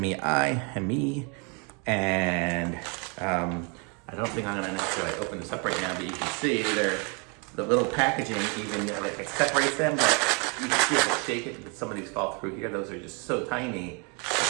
and I don't think I'm gonna necessarily open this up right now, but you can see the little packaging even like it separates them, but you can see if I shake it, some of these fall through here. Those are just so tiny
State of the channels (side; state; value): left; quieter; 34.2 dB